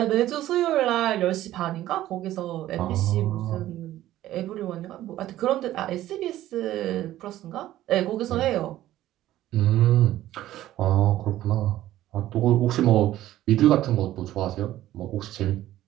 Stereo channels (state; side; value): quieter; left; 14.1 dB